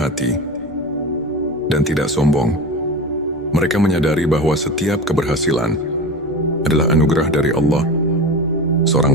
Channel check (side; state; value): right; noise; rumble, 27 dB below the sound